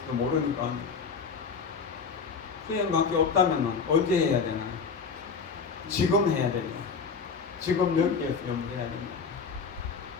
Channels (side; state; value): right; quieter; 5.4 dB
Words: 모르니까 수행밖에 없다면 언제 해야 되나요? 지금 해야 돼요. 지금 여기에서 염두해야 됩니다.